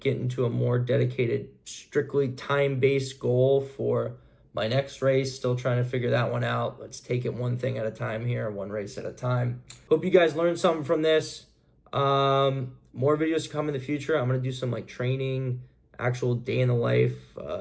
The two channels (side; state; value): both; identical; correlation 1.00